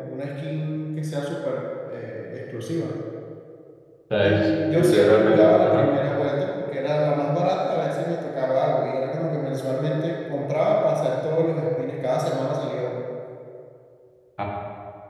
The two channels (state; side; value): identical; both; correlation 1.00